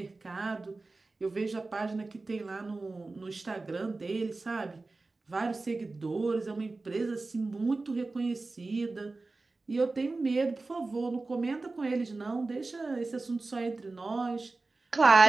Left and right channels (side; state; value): left; quieter; 3.5 dB